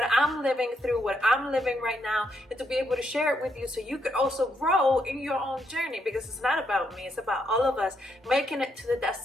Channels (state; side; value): normal; both; correlation 0.77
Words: I'm living through, what I'm living right now, and to be able to share it with you so you could also grow in your own journey, because it's not about me. It's about all of us making it to the